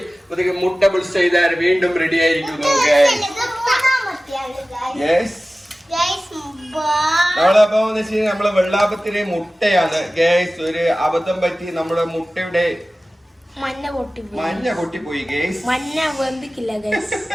മുട്ട ബുൾസ് ചെയ്താൽ വീണ്ടും റെഡി ആയിരിക്കുന്നു ഗൈസ്. നമ്മളപ്പോ നമ്മളെ വെള്ളാപ്പത്തിന് മുട്ടയാണ് ഗൈസ്. ഒരു അബദ്ധം പറ്റി നമ്മുടെ മുട്ടയുടെ മഞ്ഞ പൊട്ടിപ്പോയി ഗൈസ്. മഞ്ഞ വെന്തിക്കില്ല ഗൈസ്.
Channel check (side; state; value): both; normal; correlation 0.97